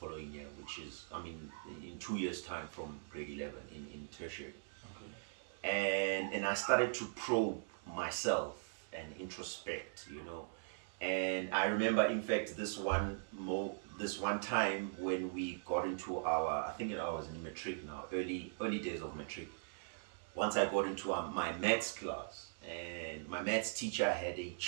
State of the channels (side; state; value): left; silent; 51 dB below the other